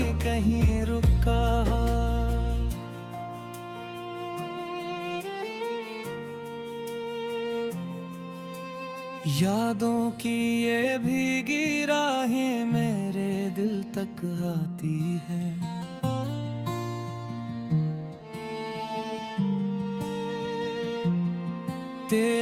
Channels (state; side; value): identical; both; correlation 1.00